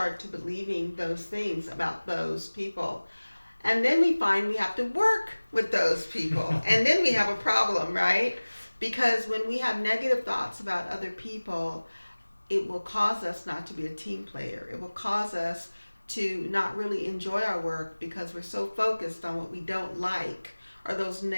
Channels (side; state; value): both; inverted; correlation -1.00